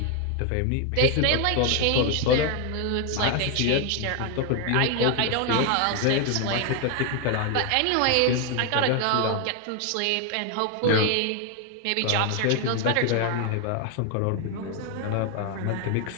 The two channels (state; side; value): different; both; correlation 0.01